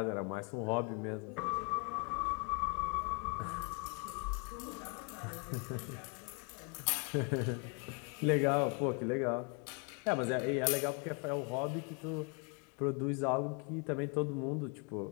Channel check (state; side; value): quieter; right; 34.6 dB